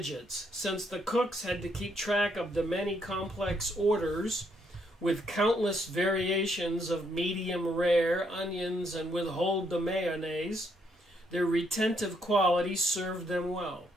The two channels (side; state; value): both; normal; correlation 0.73